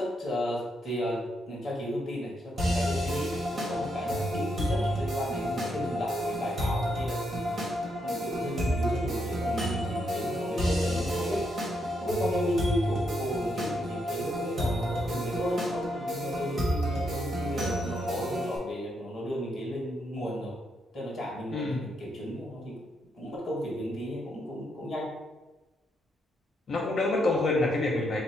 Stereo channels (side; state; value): both; normal; correlation 0.79